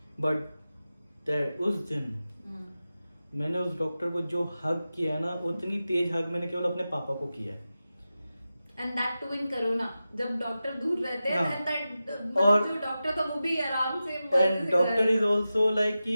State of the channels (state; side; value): inverted; both; correlation -0.93